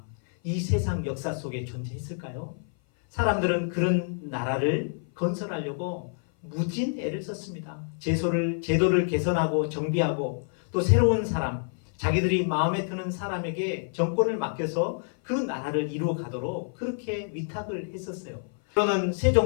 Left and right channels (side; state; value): right; silent; 57 dB below the other